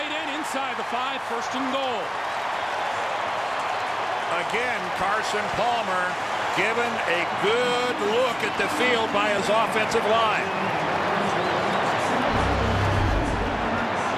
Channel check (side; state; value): both; identical; correlation 1.00